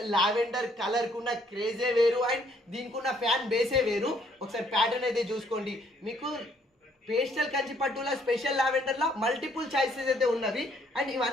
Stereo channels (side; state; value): both; normal; correlation 0.66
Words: లావెండర్ కలర్ కున్న క్రేజే వేరు అండ్ దీనికి ఉన్న ఫ్యాన్ బేసే వేరు. ఒకసారి ప్యాటర్న్ అయితే చూసుకోండి. మీకు పేస్టల్ కంచి పట్టులో స్పెషల్ లావెండర్ లో మల్టిపుల్ చాయిసెస్ అయితే ఉన్నవి అండ్